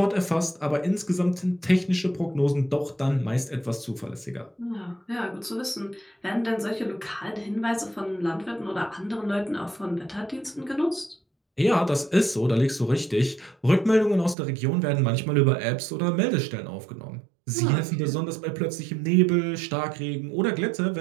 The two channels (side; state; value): left; drops out; at 14.4 s